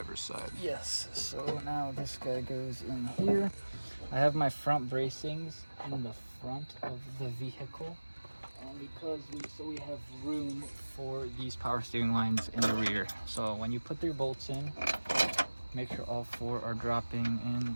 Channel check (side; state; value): both; inverted; correlation -1.00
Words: side. Yes, so now this guy goes in here. I have my front bracings in the front of the vehicle, because we have room for these power steering lines in the rear. So when you put your bolts in, make sure all 4 are dropping in